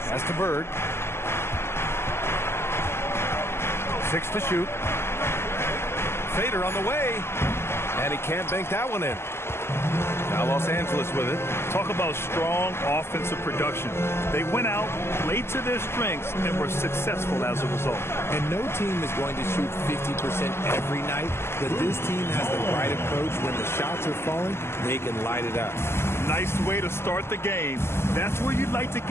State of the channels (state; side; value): late; right; 0.12 ms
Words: Pass to Bird. 6 to shoot. Fader on the way. And he can't bank that one in. Now Los Angeles with it. Talk about strong offensive production. They went out, played to their strengths, and were successful as a result. And no team is going to shoot 50% every night, but this team has the right approach. When the shots are falling, they can light it up. Nice way to start the game. That's where you'd like to